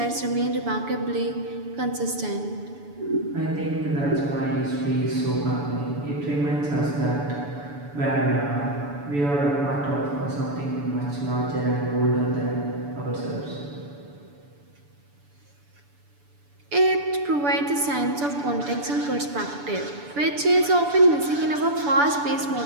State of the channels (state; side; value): late; left; 6.9 ms